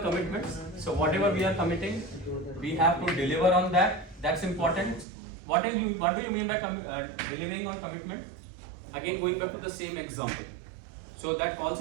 commitments. So whatever we are committing, we have to deliver on that. That's important. What do you mean by delivering on commitment? Again, going back to the same example. So that call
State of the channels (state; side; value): drops out; left; at 5.1 s